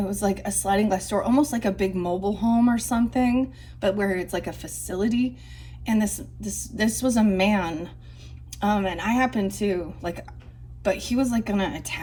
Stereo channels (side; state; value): both; identical; correlation 1.00